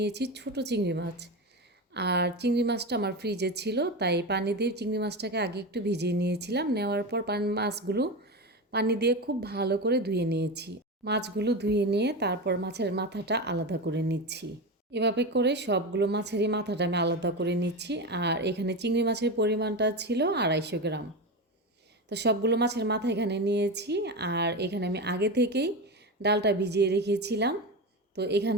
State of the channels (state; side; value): normal; both; correlation 0.20